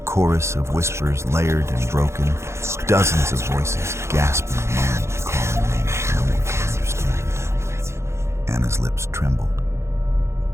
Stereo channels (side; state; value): left; late; 0.13 ms